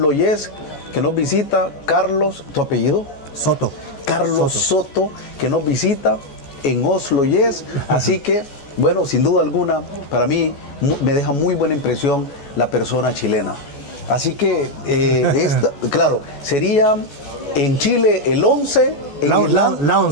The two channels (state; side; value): late; right; 14 ms